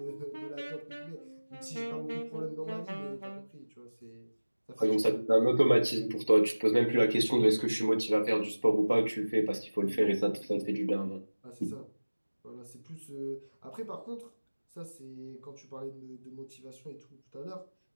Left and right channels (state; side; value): inverted; both; correlation -1.00